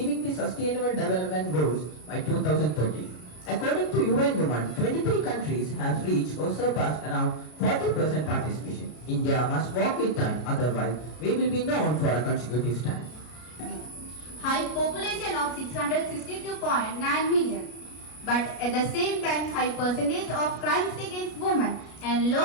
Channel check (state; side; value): late; right; 33 ms